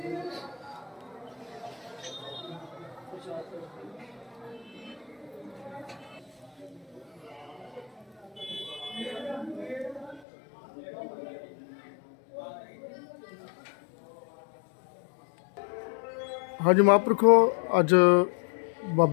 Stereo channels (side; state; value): right; drops out; at 10.2 s